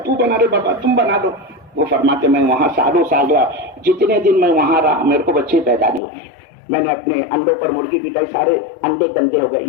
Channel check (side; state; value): right; drops out; at 6.0 s